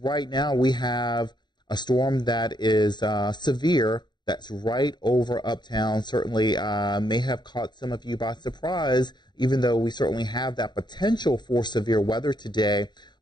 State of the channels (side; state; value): right; late; 0.21 ms